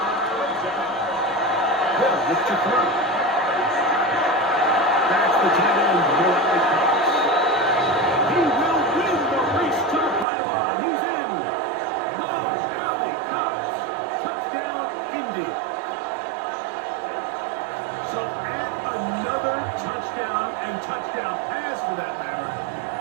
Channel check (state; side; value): drops out; left; at 10.2 s